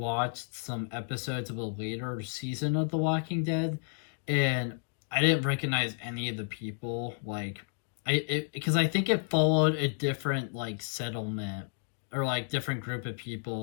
some episodes of a later season of The Walking Dead, and I didn't recognize any of the people, like, because I think it followed a different, like, settlement, or, like, different group of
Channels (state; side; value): silent; right; 57 dB below the other